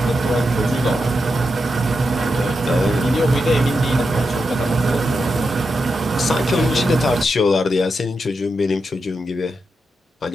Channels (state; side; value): normal; both; correlation 0.86